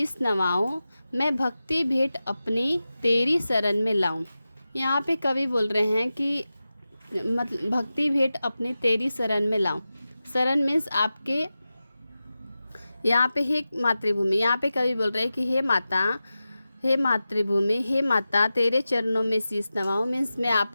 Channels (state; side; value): inverted; both; correlation -0.94